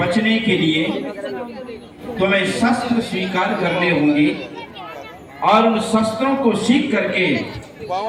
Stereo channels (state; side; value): identical; both; correlation 1.00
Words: के लिए तुम्हें शस्त्र स्वीकार करने होंगे और उन शस्त्रों को सीख करके